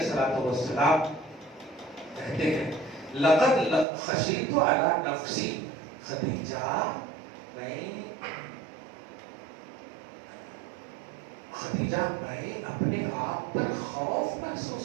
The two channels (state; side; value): drops out; left; at 3.9 s